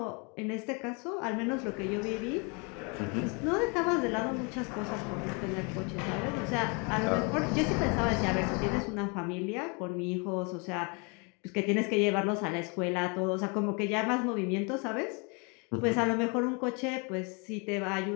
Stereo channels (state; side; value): quieter; right; 32.7 dB